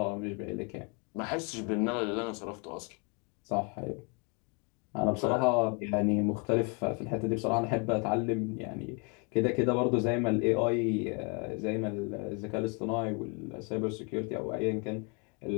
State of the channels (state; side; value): quieter; right; 34.1 dB